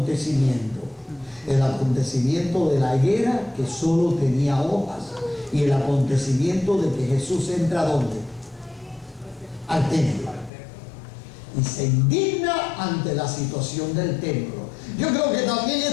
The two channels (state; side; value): drops out; right; at 10.5 s